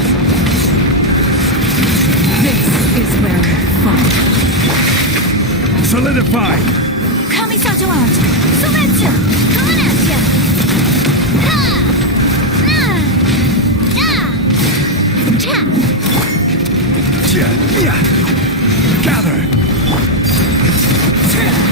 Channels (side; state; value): both; normal; correlation 0.03